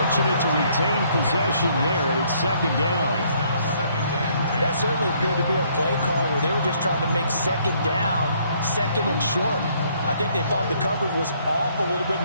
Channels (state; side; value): inverted; both; correlation -0.66